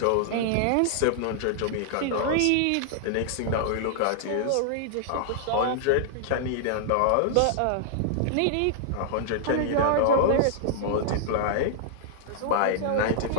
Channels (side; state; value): both; different; correlation -0.01